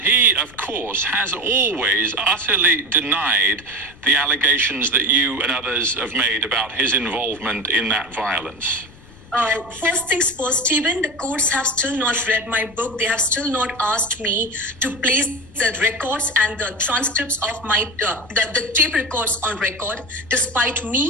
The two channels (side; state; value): left; noise; rumble, 22 dB below the sound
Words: he, of course, has always utterly denied the allegations that you and others have made about his involvement in that violence. First things first, Stephen, the courts have still not read my book. They have still not asked me to place the records and the transcripts of my the tape records on record, despite